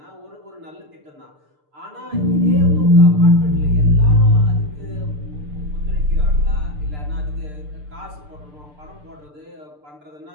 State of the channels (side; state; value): left; late; 6.7 ms